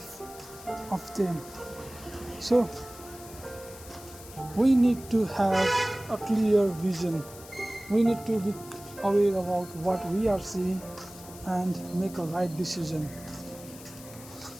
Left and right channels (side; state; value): left; noise; hiss, 17 dB below the sound